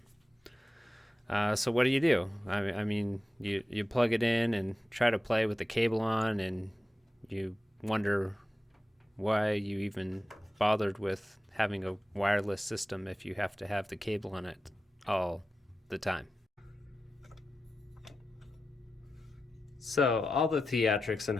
So what do? You plug it in and try to play with the cable on, and you wonder why you even bothered with having a wireless system if you have to have the cable on it all the time. So, all the theatrics and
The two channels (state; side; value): normal; both; correlation 0.92